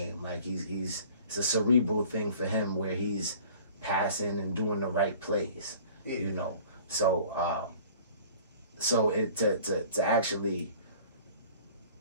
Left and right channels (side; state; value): both; inverted; correlation -0.48